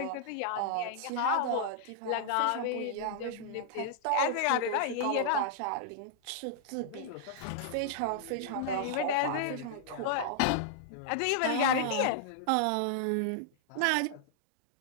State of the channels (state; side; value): different; both; correlation -0.01